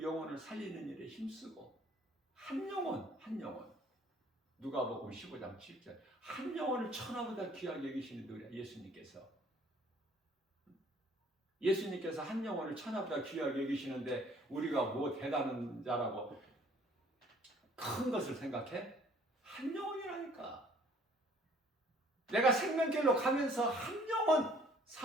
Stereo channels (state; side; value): normal; both; correlation 0.57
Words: 영혼을 살리는 일에 힘쓰고, 한 영혼 누가복음 15장 7절 한 영혼을 천하보다 귀하게 여기시는 누구야? 예수님께서 한 영혼을 천하보다 귀하게 여기시는데 우리가 뭐 대단한 자라고 큰 것을 생각해? 한 영혼이라니까. 내가 생명길로 가면서 한 영혼